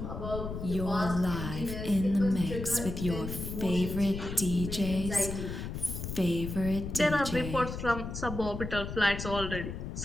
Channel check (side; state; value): left; noise; rumble, 6 dB below the sound